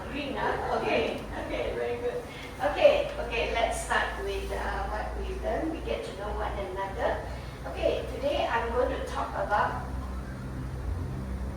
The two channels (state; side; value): identical; both; correlation 1.00